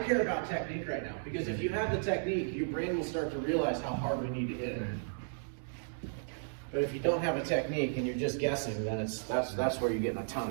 about technique right now, because if you have the technique, your brain will start to realize how hard we need to hit it. But if you don't have a technique and you're just guessing, then that's where you get in a ton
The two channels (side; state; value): left; silent; digital silence